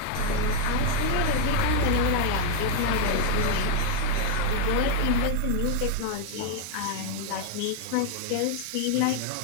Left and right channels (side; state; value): both; different; correlation 0.00